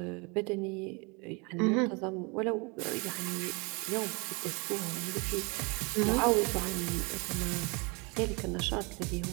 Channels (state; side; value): quieter; left; 30.0 dB